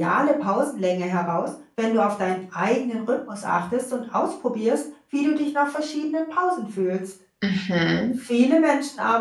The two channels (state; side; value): identical; both; correlation 1.00